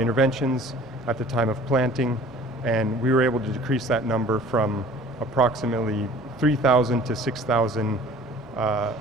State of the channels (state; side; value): normal; both; correlation 0.48